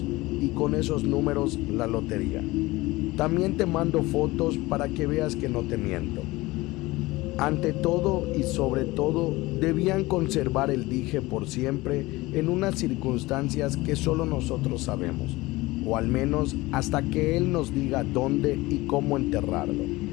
y con esos números la lotería. También te mando fotos para que veas que no te miento. Ante todo y sobre todo, debían conservar el dije por siempre en unas circunstancias que solo nosotros sabemos, o al menos hasta que él nos diga dónde y cómo enterrarlo.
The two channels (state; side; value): quieter; right; 20.3 dB